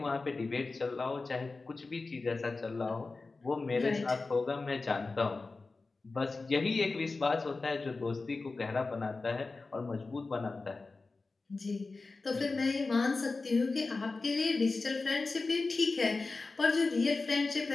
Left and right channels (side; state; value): right; quieter; 3.7 dB